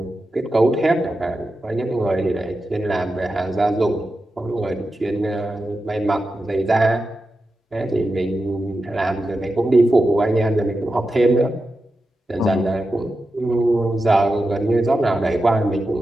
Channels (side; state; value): both; normal; correlation 0.90